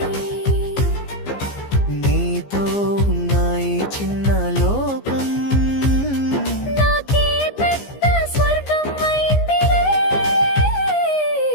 నీతో ఉన్న ఈ చిన్న లోకం నాకే పెద్ద స్వర్గం అయిందిలే.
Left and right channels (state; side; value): late; right; 15 ms